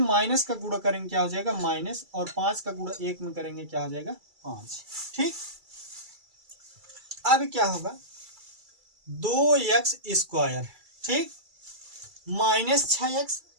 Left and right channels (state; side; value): late; left; 2.3 ms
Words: का गुणा करेंगे क्या हो जाएगा माइनस, और 5 का गुणा 1 में करेंगे क्या हो जाएगा 5। ठीक, अब क्या होगा 2x स्क्वायर, ठीक, माइनस 6x